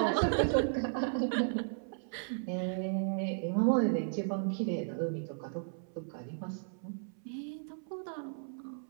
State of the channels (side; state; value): left; silent; 55 dB below the other